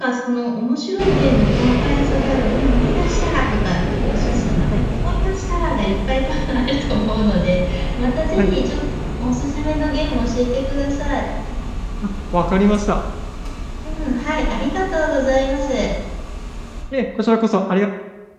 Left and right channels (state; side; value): identical; both; correlation 1.00